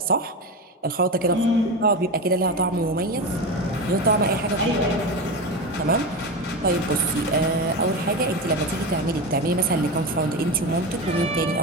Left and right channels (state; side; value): normal; both; correlation 0.21